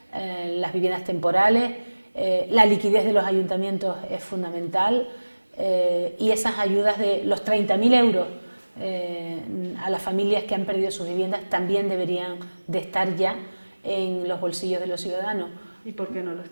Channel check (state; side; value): inverted; both; correlation -1.00